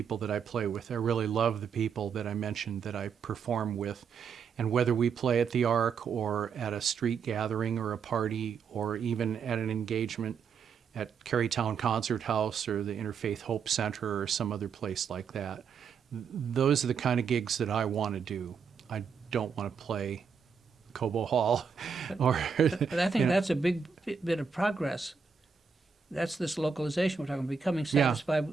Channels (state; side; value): quieter; left; 6.2 dB